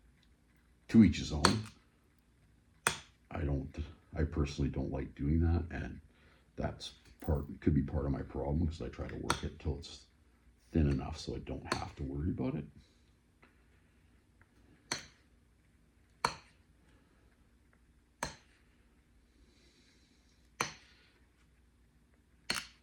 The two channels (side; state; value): both; identical; correlation 1.00